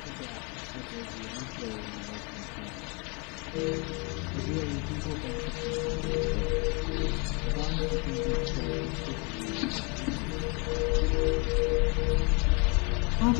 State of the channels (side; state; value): right; quieter; 32.0 dB